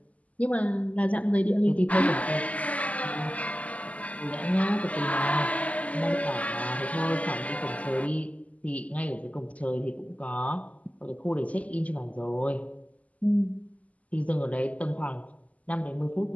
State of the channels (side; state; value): right; late; 0.072 ms